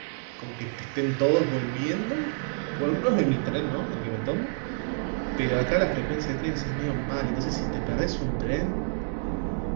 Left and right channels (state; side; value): silent; left; 59 dB below the other